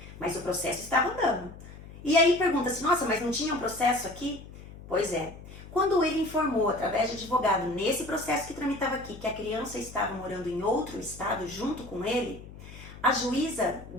mas o processo estava andando. E aí pergunta-se, nossa, mas não tinha um processo aqui? Pois é. Quando ele informou, através de advogado, nesse processo que tramitava aqui, que a criança estava morando em outro estado junto com ele, a juíza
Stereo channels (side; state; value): left; noise; hum, 16 dB below the sound